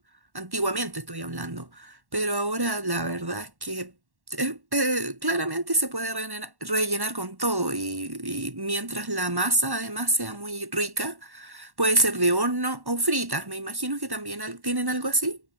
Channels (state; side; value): late; left; 1.1 ms